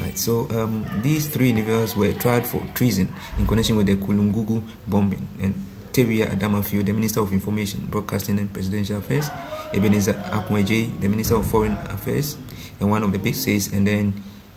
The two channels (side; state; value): both; identical; correlation 1.00